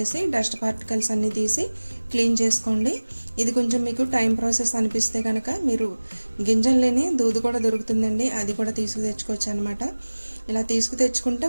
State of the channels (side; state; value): both; inverted; correlation -1.00